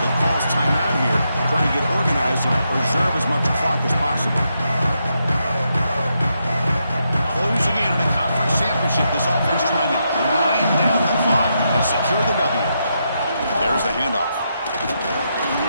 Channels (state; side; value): inverted; both; correlation -0.82